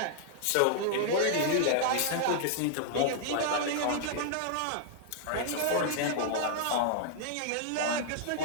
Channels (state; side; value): different; both; correlation -0.01